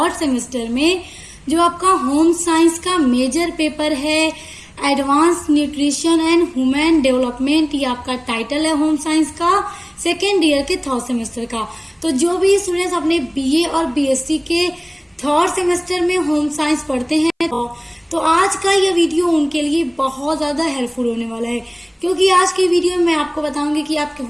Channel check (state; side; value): identical; both; correlation 1.00